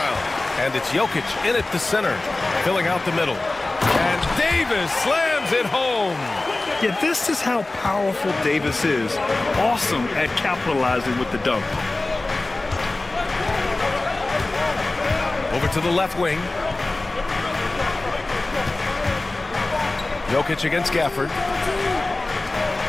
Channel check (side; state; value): right; quieter; 3.0 dB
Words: And it's Jokic in at the center, filling out the middle. And Davis slams it home. Yeah, this is how powerful Davis is. Awesome at capitalizing with the dunk. Over to the left wing. Jokic against Gafford.